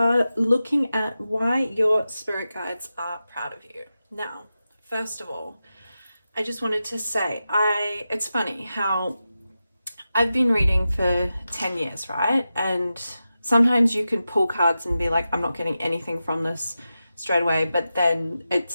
looking at why your spirit guides are proud of you. Now, first of all, I just wanted to say, it's funny how I've been reading for 10 years, right? And sometimes you can pull cards and be like, I'm not getting anything from this straight away, but then it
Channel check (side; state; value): both; inverted; correlation -0.92